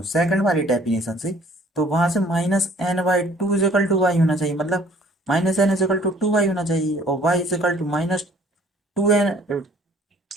सेकंड वाली डेफिनेशन से, तो वहां से minus n by two is equal to y होना चाहिए, मतलब minus n is equal to two y होना चाहिए, और y is equal to minus two n,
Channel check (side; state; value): both; normal; correlation 0.56